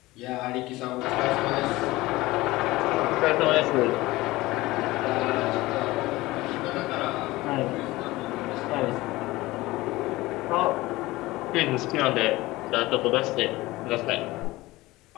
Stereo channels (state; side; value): quieter; right; 19.4 dB